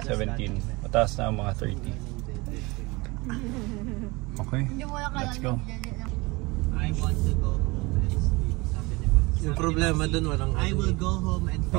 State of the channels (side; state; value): left; quieter; 24.2 dB